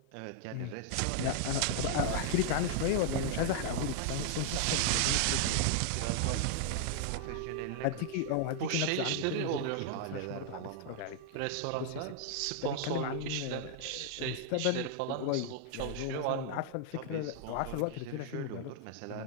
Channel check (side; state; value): both; different; correlation 0.00